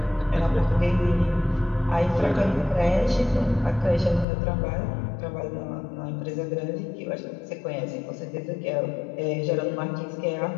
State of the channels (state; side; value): drops out; right; at 4.2 s